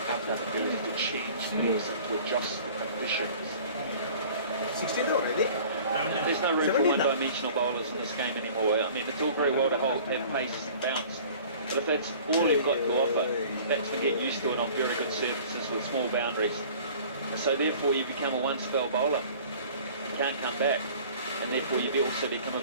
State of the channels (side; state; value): both; inverted; correlation -0.47